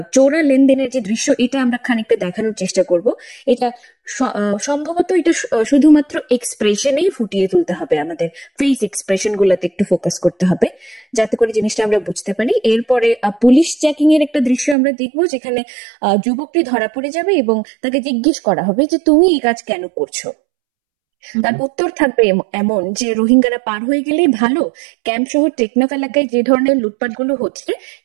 চোরা লেনদেনের যে দৃশ্য, এটা আমরা খানিকটা দেখানোর চেষ্টা করব। এটা সম্ভবত এটা শুধুমাত্র এক্সপ্রেশনেই ফুটিয়ে তুলতে হবে, আমাদের ফেস এক্সপ্রেশন গুলাতে একটু ফোকাস করতে হবে, যাতে করে জিনিসটা আমরা বুঝতে পারি। এরপরে পুলিশ চেকিং এর একটা দৃশ্য আমরা দেখবো, যেখানে যুবকটি ধরা পড়ে যাবে এবং তাকে জিজ্ঞেস করা হবে যে তুমি এই কাজ কেন করছো। তার উত্তর থাকবে এমন যে রোহিঙ্গারা পার হয়ে গেলেই ভালো। ক্যাম্প শহর টেকনাফ এলাকায় যে ধরনের লুটপাটগুলো হচ্ছে,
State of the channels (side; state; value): left; drops out; at 14.8 s